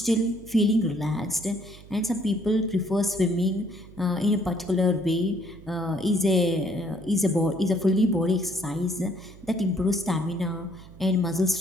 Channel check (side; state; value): right; noise; hum, 20 dB below the sound